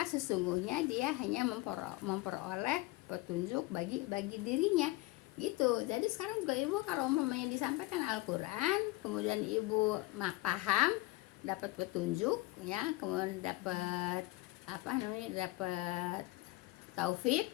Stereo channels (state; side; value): quieter; right; 19.2 dB